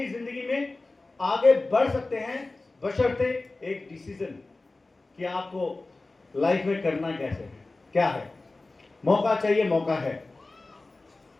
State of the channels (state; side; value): quieter; right; 3.2 dB